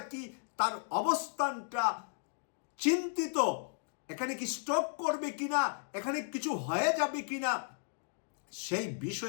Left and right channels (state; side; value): silent; right; digital silence